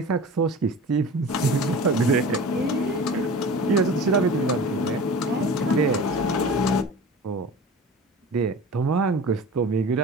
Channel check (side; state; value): both; normal; correlation 0.36